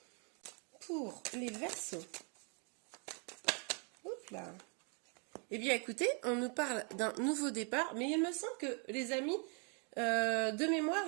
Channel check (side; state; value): left; quieter; 37.4 dB